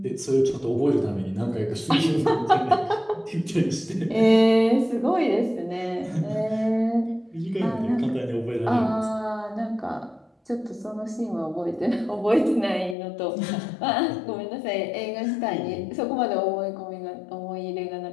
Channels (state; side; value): drops out; right; at 13.0 s